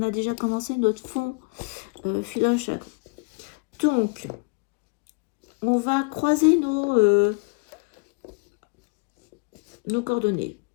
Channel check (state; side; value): quieter; right; 31.8 dB